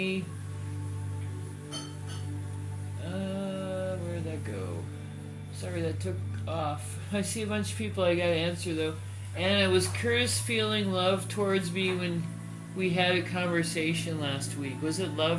Where'd that go? Sorry, that took off. I see a bunch of people I gotta answer, though. Anna, was Curtis feeling love towards me when we had a conversation last week? Was it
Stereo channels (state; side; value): identical; both; correlation 1.00